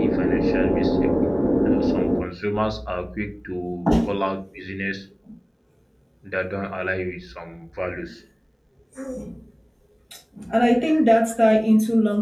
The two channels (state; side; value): identical; both; correlation 1.00